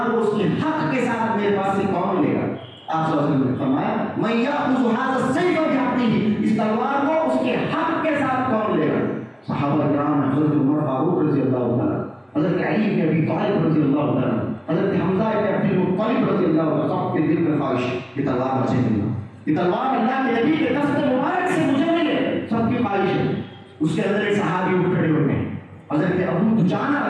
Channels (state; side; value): identical; both; correlation 1.00